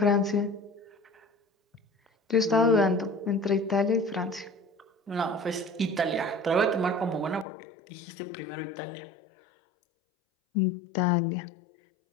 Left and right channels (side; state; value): right; drops out; at 7.5 s